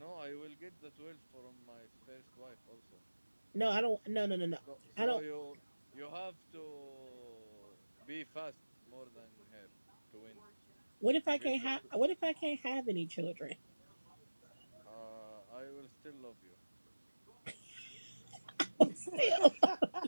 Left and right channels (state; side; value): inverted; both; correlation -1.00